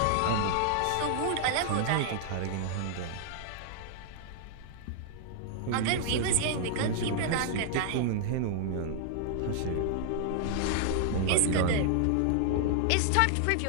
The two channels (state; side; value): different; both; correlation -0.01